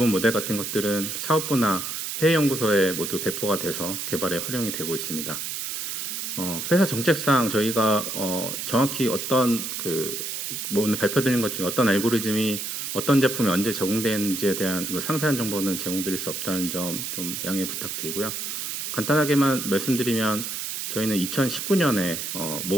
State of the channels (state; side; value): noise; right; hiss, 4 dB below the sound